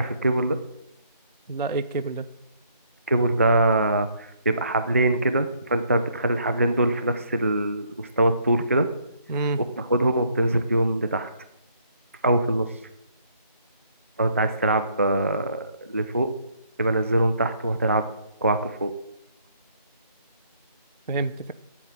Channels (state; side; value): inverted; both; correlation -0.67